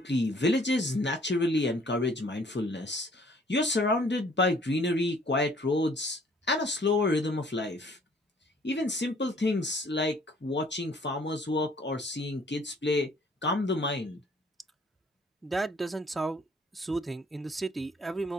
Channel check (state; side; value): normal; both; correlation 0.58